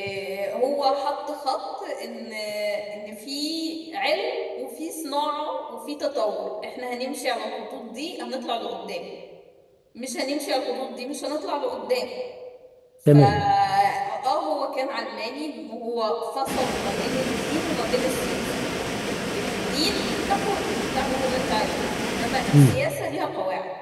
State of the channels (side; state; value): both; identical; correlation 1.00